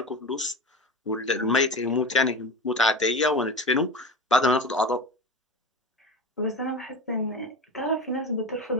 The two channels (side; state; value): both; normal; correlation 0.27